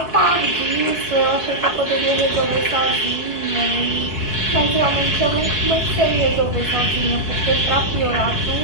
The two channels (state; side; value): late; right; 4.7 ms